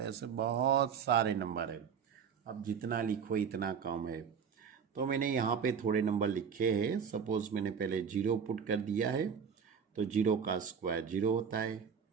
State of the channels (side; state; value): left; quieter; 6.9 dB